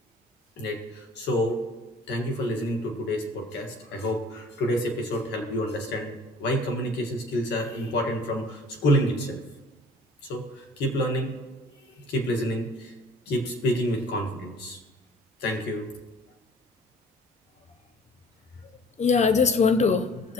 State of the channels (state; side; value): normal; both; correlation 0.51